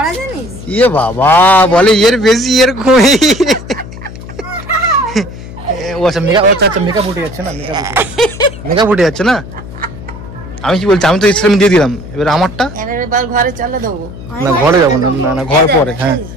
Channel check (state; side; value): noise; left; hum, 13 dB below the sound